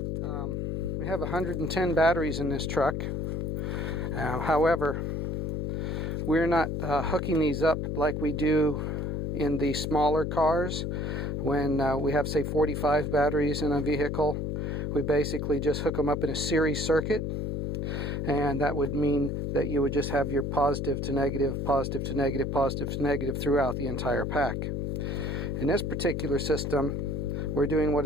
We have 110 batteries in this truck. However, we're not hooking these up like we do in the smaller cars. When we have, say, 45 batteries in a vehicle, we basically just hook them up in a series circuit. And that would mean that you would just have your positive to negative, positive to negative, positive to negative throughout the entire pack. In this particular system, we're doing what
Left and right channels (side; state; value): left; noise; hum, 1 dB below the sound